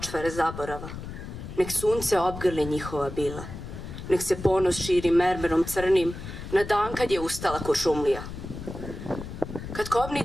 zaborava. Nek sunce obgrli njihova bila. Nek se ponos širi mermerom crnim na dan kad je ustala Kuršumlija. Kad kobni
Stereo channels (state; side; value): noise; left; rumble, 10 dB below the sound